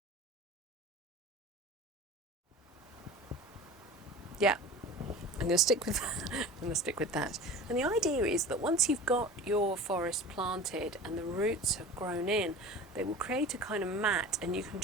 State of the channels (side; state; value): both; normal; correlation 0.37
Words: Yeah, I'm going to stick with that. I'm going to stick with that. And the idea is that once you've got your forest planted and the roots have grown in, they will create a kind of mat, and you can